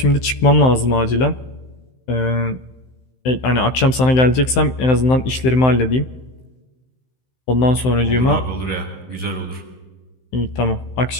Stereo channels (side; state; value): right; late; 16 ms